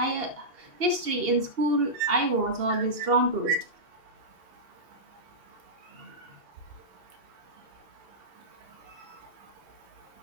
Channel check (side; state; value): left; late; 2.8 ms